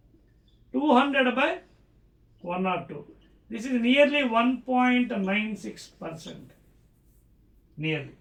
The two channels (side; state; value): both; identical; correlation 1.00